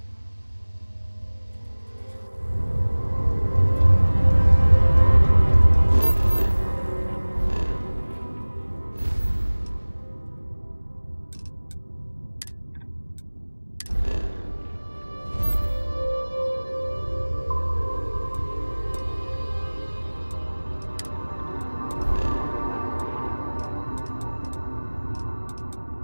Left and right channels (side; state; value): both; inverted; correlation -1.00